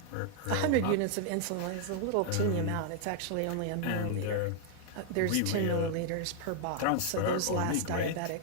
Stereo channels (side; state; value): both; different; correlation 0.00